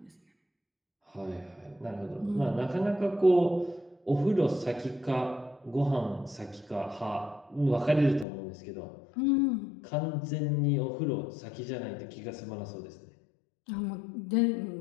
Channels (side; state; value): right; drops out; at 8.2 s